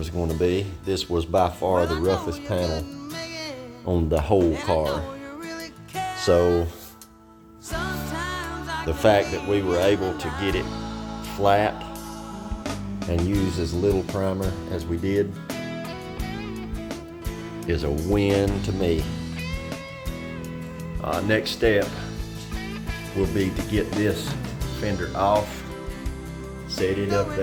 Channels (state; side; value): identical; both; correlation 1.00